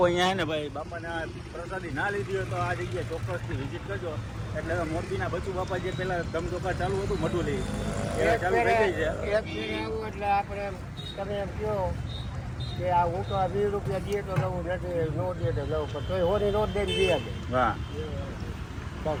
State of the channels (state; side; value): identical; both; correlation 1.00